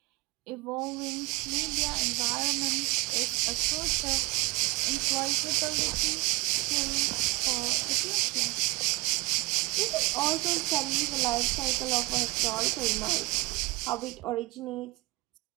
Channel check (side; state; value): left; quieter; 23.2 dB